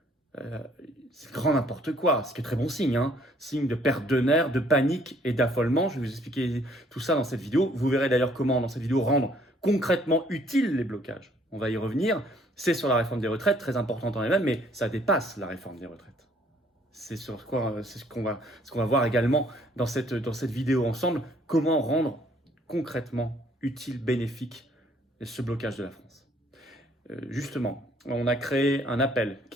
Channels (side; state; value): both; normal; correlation 0.62